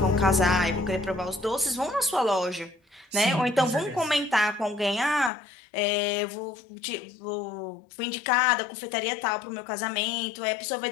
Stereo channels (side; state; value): right; drops out; at 5.3 s